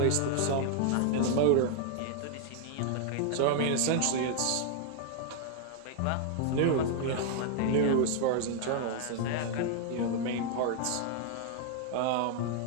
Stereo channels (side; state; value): both; different; correlation 0.00